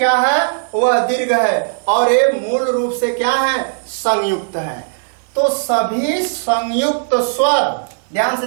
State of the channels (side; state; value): left; silent; digital silence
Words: है, वह दीर्घ है, और ये मूल रूप से क्या है, संयुक्त है। तो सभी संयुक्त स्वर, ध्यान से